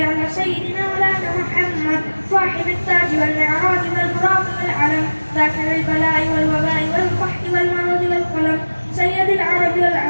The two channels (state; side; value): inverted; both; correlation -1.00